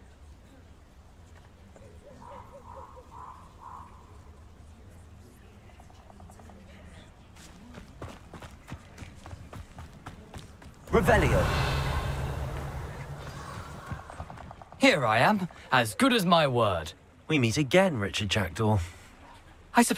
Revelio. Here I am, as good as my word. We meet again, Richard Jackdaw. I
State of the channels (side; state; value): both; identical; correlation 1.00